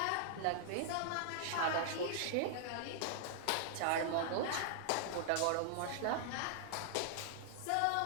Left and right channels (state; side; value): different; both; correlation -0.01